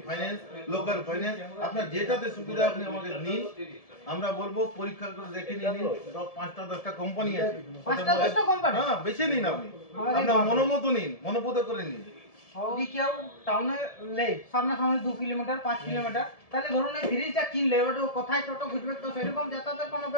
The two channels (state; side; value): late; right; 1.7 ms